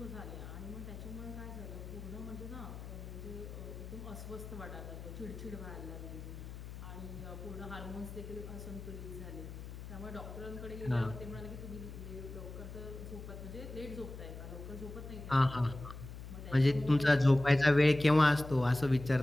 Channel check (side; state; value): left; noise; hum, 11 dB below the sound